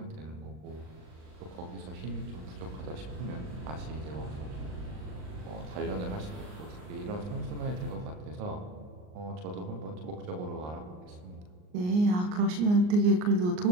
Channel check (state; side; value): late; left; 39 ms